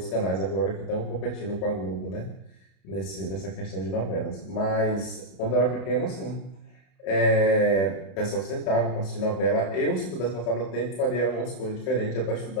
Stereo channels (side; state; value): right; late; 33 ms